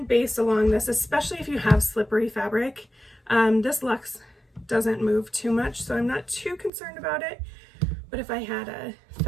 baste along this, especially if you have slippery fabric. This luxe doesn't move too much, so I'm not too concerned about it. But if I had a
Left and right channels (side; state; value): left; drops out; at 6.7 s